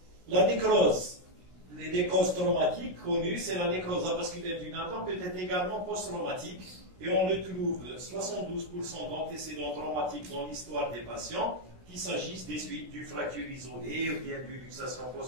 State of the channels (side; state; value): left; late; 16 ms